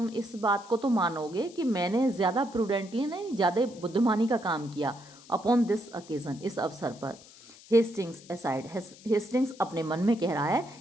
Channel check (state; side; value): noise; left; hiss, 22 dB below the sound